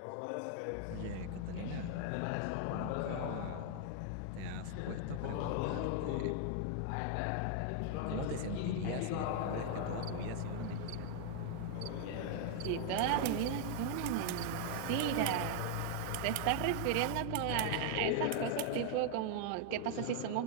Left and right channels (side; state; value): both; different; correlation 0.00